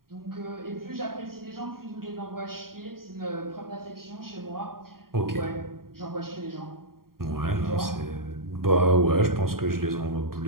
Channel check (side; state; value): left; late; 0.93 ms